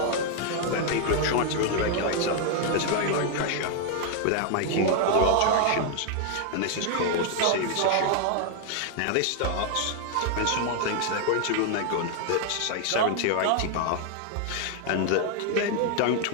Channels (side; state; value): both; different; correlation 0.00